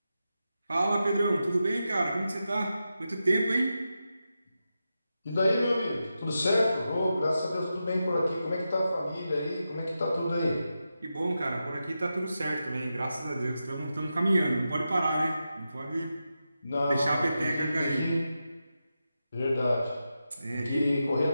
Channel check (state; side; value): inverted; both; correlation -0.89